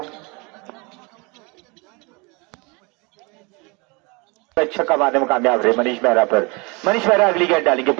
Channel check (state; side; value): quieter; left; 28.7 dB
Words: छक्का मारने में कामयाब रहे मनीष मेहरा पर। मनीष मेहरा अगली गेंद डालेंगे